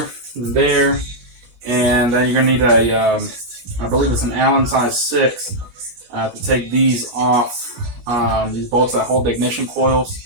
and there. And then you're going to need a, I believe it's an Allen size 6 to take these off, these bolts that hold the ignition coils.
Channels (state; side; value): late; left; 16 ms